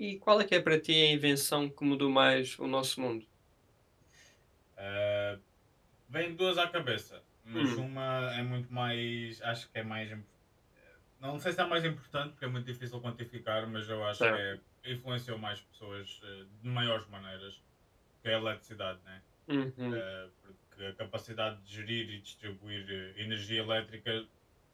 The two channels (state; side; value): identical; both; correlation 1.00